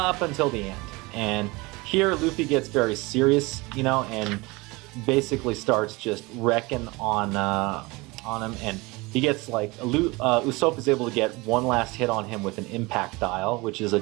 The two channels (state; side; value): quieter; left; 24.1 dB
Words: until the end. And here Luffy gets very serious, and basically starts just wrecking on him, and he gets Usopp is able to get one last hit on him with an impact dial, which is a